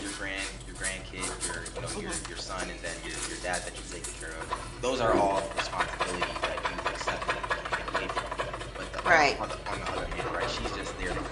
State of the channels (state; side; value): identical; both; correlation 1.00